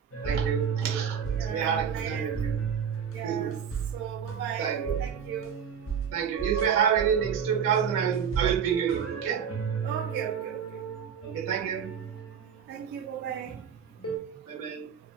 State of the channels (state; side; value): quieter; left; 7.5 dB